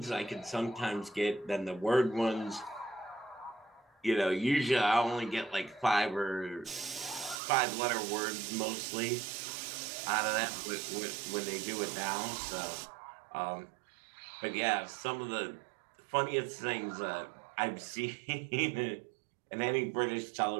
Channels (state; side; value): drops out; left; at 7.4 s